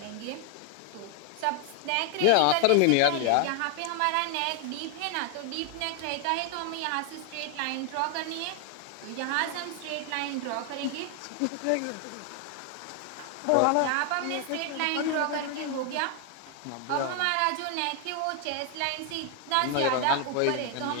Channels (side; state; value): both; different; correlation 0.00